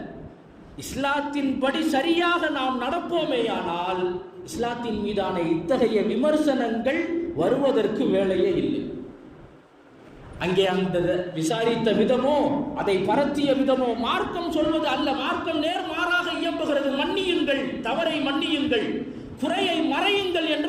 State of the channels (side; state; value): both; identical; correlation 1.00